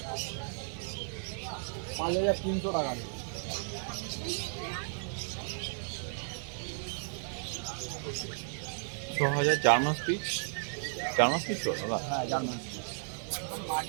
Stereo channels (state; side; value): silent; left; 55 dB below the other